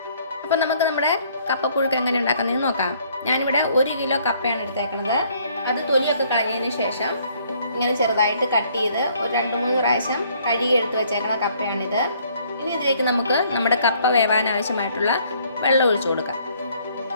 അപ്പോൾ നമുക്ക് നമ്മുടെ കപ്പപ്പുഴുക്ക് എങ്ങനെ ഉണ്ടാക്കുന്നതെന്ന് നോക്കാം. ഞാനിവിടെ 1 കിലോ കപ്പയാണ് എടുത്തേക്കുന്നത്. അത് തൊലിയൊക്കെ കളഞ്ഞതിന് ശേഷം ഇങ്ങനെ ചെറുതായിട്ട് കട്ട് ചെയ്ത് ഒരു 2-3 പ്രാവശ്യം കഴുകി എടുത്ത് വെച്ചേക്കുന്ന കപ്പയാണിത്. ഇനി ഇതിലേക്ക് നമുക്ക് നമ്മുടെ കപ്പ വേവാൻ ആവശ്യമായിട്ടുള്ള വെള്ളം ഒഴിച്ചു കൊടുക്കാം.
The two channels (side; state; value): both; inverted; correlation -0.63